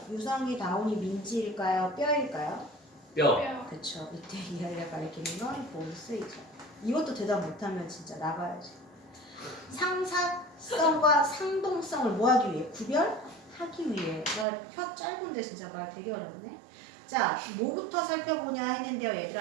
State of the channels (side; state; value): left; drops out; at 14.5 s